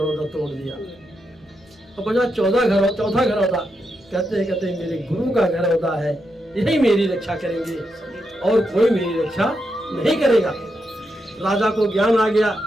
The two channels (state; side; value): normal; both; correlation 0.84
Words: तोड़ दिया। अब बचा चौथा घरौदा। कहते मेरे गुरु का घरौदा है, यही मेरी रक्षा करेंगे और कोई मेरी रक्षा नहीं करेगा। राजा को ज्ञान आ गया।